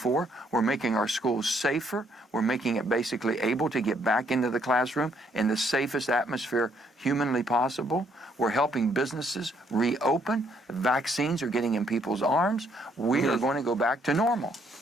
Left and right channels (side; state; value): both; normal; correlation 0.69